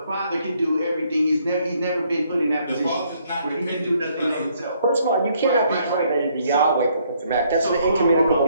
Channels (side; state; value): both; inverted; correlation -0.68